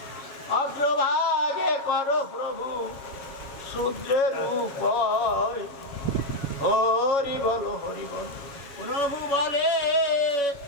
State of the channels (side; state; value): right; late; 7.1 ms